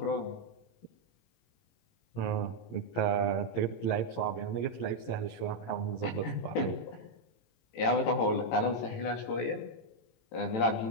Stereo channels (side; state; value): right; late; 18 ms